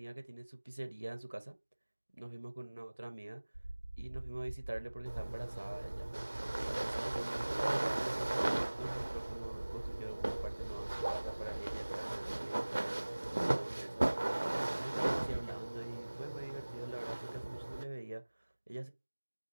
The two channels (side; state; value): both; inverted; correlation -1.00